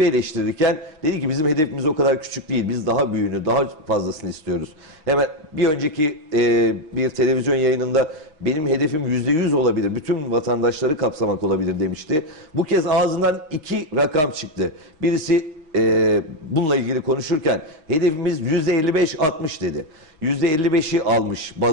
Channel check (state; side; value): late; left; 6.3 ms